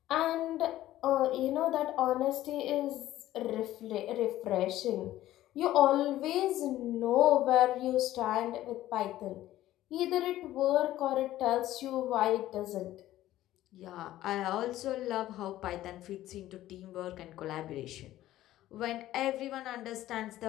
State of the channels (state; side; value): quieter; right; 14.4 dB